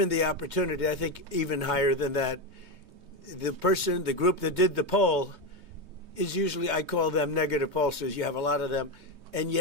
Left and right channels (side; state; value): left; late; 3.2 ms